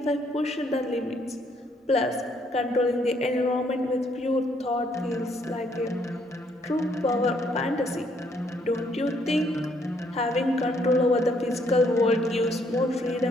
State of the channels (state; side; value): normal; both; correlation 0.69